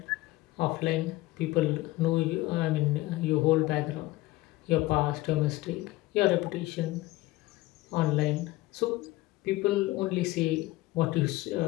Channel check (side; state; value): right; quieter; 18.8 dB